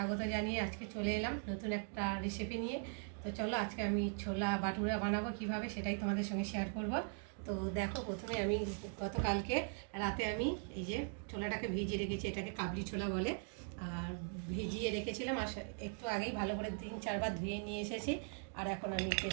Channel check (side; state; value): left; silent; 51 dB below the other